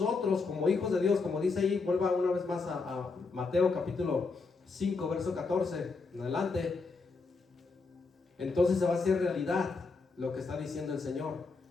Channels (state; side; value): quieter; right; 4.2 dB